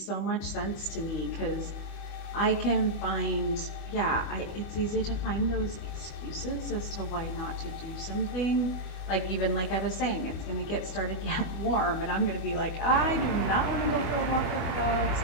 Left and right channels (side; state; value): right; late; 25 ms